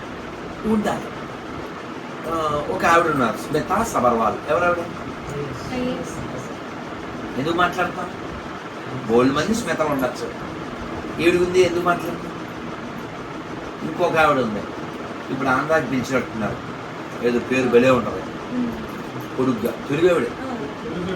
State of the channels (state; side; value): identical; both; correlation 1.00